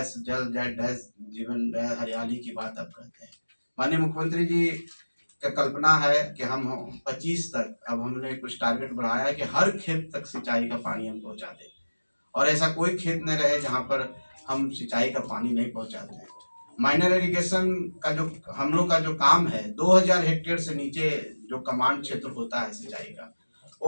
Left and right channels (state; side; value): inverted; both; correlation -1.00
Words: जल डैश जीवन डैश हरियाली की बात आप कहते हैं। माननीय मुख्यमंत्री जी का कल्पना है कि हम 25 तक, अब हमने कुछ टारगेट बढ़ाया है कि हर खेत तक सिंचाई का पानी हम पहुंचा दें, और ऐसा कोई खेत न रहे जहां पर हम सिंचाई का पानी नहीं पहुंचाते हैं। माइनर इरिगेशन का जो हम लोग का जो काम है, 2000 हेक्टेयर से नीचे जो कमांड क्षेत्र होता है सिंचाई का,